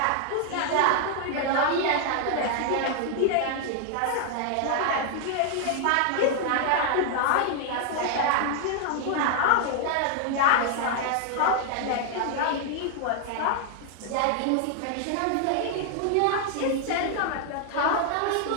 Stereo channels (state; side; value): different; both; correlation 0.00